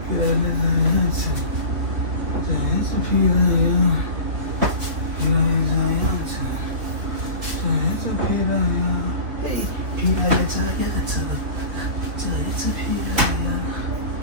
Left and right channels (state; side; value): late; left; 3.3 ms